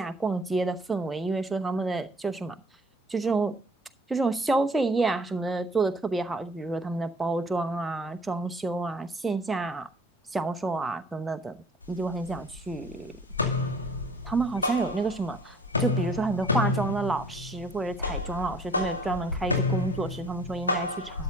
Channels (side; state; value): both; normal; correlation 0.53